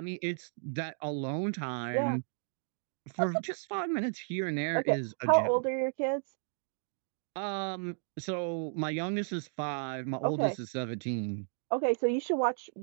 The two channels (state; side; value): silent; left; 55 dB below the other